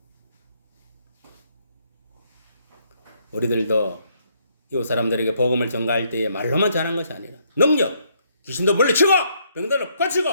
우리들도 이웃 사람들에게 복음을 전가할 때에 말로만 전한 것이 아니라 능력, 귀신도 물리치고 병들을 고치고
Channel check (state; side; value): inverted; both; correlation -0.71